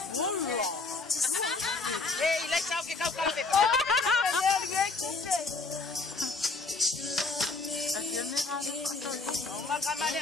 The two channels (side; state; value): right; quieter; 3.8 dB